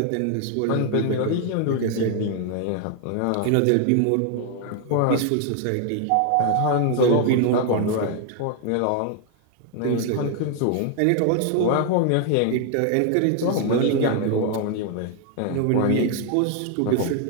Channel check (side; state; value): both; different; correlation 0.00